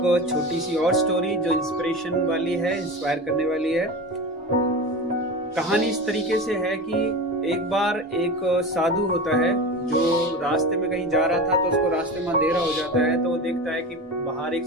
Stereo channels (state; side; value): normal; both; correlation 0.29